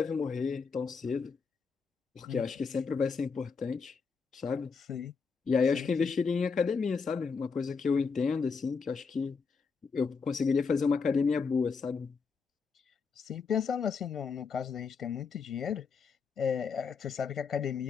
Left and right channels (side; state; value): right; quieter; 5.3 dB